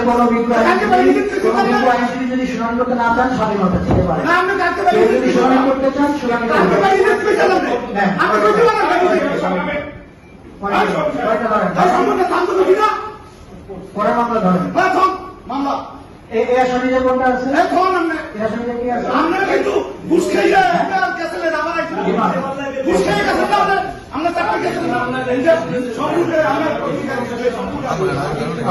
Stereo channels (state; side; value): identical; both; correlation 1.00